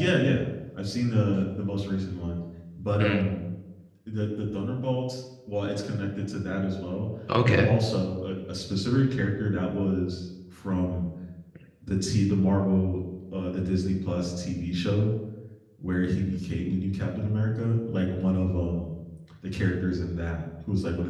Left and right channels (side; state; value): both; identical; correlation 1.00